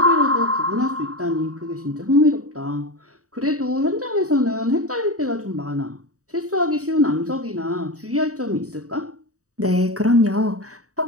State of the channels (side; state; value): left; late; 0.66 ms